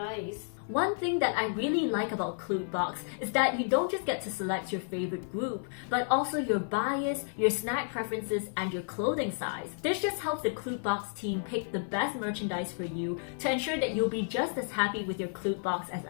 One thing that I really like about Kpop is that you don't just get to select your favorite group, but also your bias, your snack preferences, and your clothing size. This just helps the Kpop team pick the best merchandise for you to ensure that you'll be just as happy with your Kpop as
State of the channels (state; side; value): silent; right; 57 dB below the other